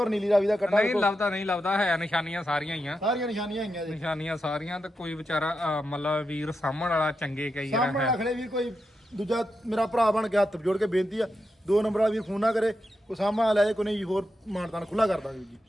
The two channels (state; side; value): normal; both; correlation 0.87